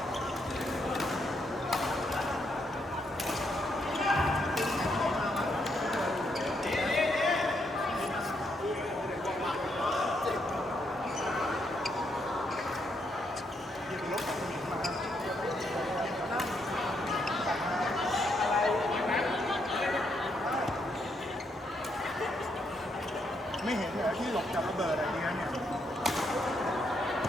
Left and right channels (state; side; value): normal; both; correlation 0.77